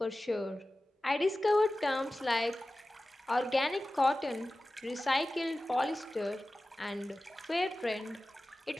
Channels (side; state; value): both; normal; correlation 0.96